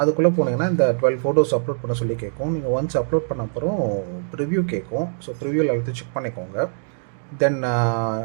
போனீங்கன்னா இந்த 12 ஃபோட்டோஸ் அப்லோட் பண்ண சொல்லி கேட்கும். நீங்கள் ஒன்ஸ் அப்லோட் பண்ண அப்புறம் ப்ரிவ்யூ கேட்கும். ஸோ ப்ரிவ்யூவில் எல்லாத்தையும் செக் பண்ணிக்கோங்க. தென்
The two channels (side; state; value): left; silent; digital silence